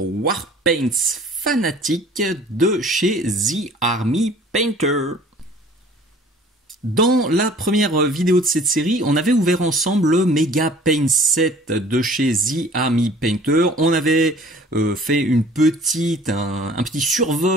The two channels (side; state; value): both; normal; correlation 0.50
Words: fanatiques de chez The Army Painter. Dans la première vidéo de cette série, on avait ouvert ensemble le Mega Paint Set de chez The Army Painter. On avait fait un petit